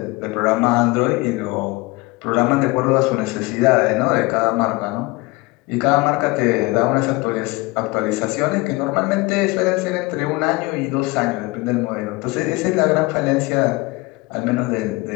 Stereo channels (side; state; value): right; quieter; 23.7 dB